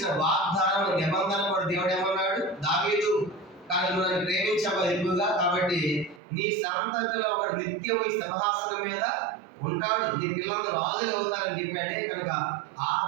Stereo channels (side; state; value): left; drops out; at 6.2 s